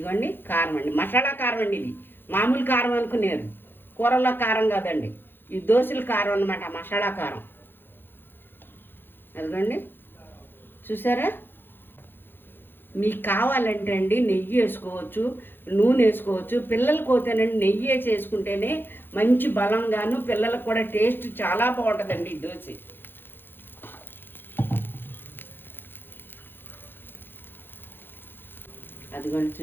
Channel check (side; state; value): right; late; 0.10 ms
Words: కారం అండి, మసాలా కారం అండి. ఇది మామూలు కారం అనుకునేరు, కూరల్లో కారం కాదండి. ఈ దోశల కారం అన్నమాట, మసాలా కారం. అదిగోండి చూసారా. మీకు కావాలంటే అండి నెయ్యి వేసుకోవచ్చు, నూనె వేసుకోవచ్చు. పిల్లలకు పోతేనండి నెయ్యి వేసి వేసుకుంటేనే మంచి బలంగాను, పిల్లలకు కూడా టేస్ట్ చాలా బాగుంటుందండి ఈ దోశ. అదిగోండి